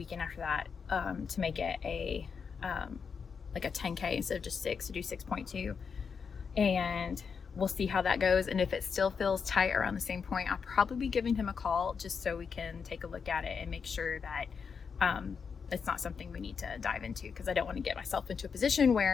after that to make it a like a 10K instead of just 6, to do 6.2. And we'll see how that goes. And if it still feels tight around the same point, I'll probably be giving him a call just so we can take a look at it and make sure that it's not something we need to dive into, because I don't want to get myself into a position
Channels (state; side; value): quieter; right; 6.0 dB